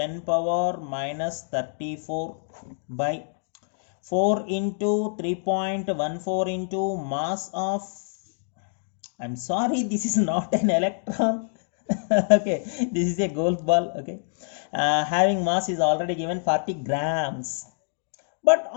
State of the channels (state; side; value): silent; right; digital silence